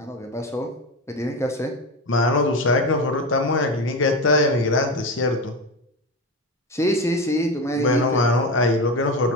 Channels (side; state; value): both; normal; correlation 0.20